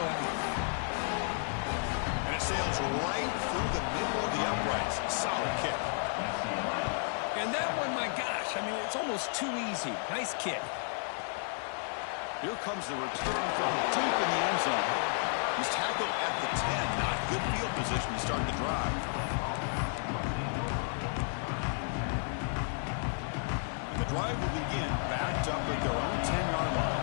And it sails right through the middle of the uprights. Solid kick. And that one, my gosh, I mean, it's almost too easy. Nice kick. Here comes the return from deep in the end zone. He's tackled at the 10. Not good field position to start the drive. And the drive will begin backed up at their own 10-yard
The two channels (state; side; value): silent; right; 56 dB below the other